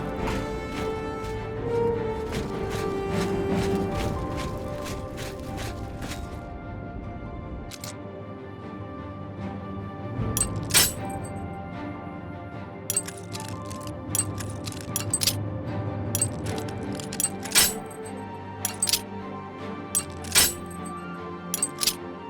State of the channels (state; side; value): identical; both; correlation 1.00